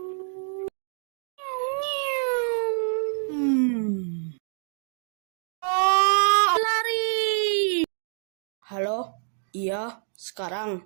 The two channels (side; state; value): left; silent; 59 dB below the other